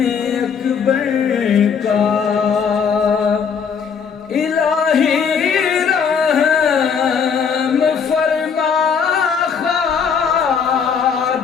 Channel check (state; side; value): quieter; right; 6.5 dB